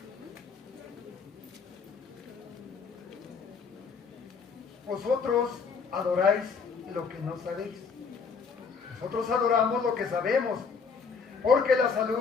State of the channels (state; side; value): quieter; right; 5.4 dB